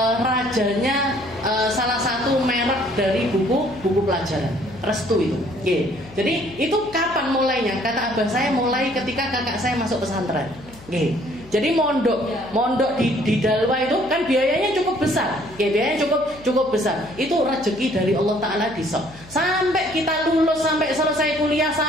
rajanya salah satu merek dari buku pelajaran Restu itu. Jadi itu kapan mulainya? Kata abah saya mulai ketika kakak saya masuk pesantren. Jadi mondok di Dalwa itu kan biayanya cukup besar. Biayanya cukup besar. Itu rezeki dari Allah Taala disok. Sampai kita lulus, sampai selesai kuliah,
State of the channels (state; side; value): noise; left; hum, 21 dB below the sound